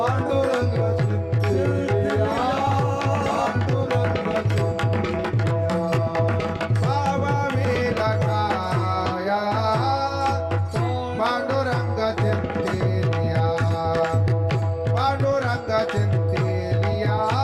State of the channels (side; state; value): both; identical; correlation 1.00